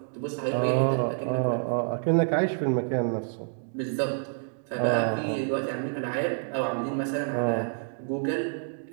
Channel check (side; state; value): left; silent; digital silence